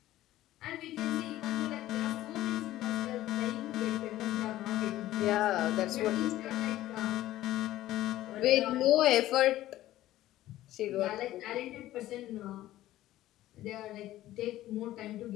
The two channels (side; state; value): right; quieter; 14.8 dB